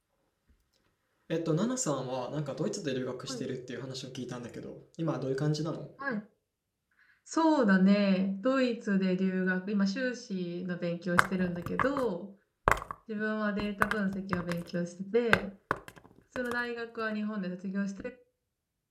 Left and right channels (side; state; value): both; identical; correlation 1.00